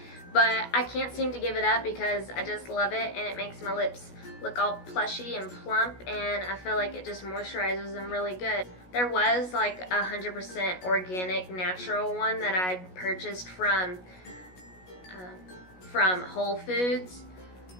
But I can't seem to give it up because I just love it, and it makes my lips look all plushy and plump, and I feel like it just moisturizes them really good. There was like 100% organic natural one that I purchased from Whole Foods,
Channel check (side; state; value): right; late; 16 ms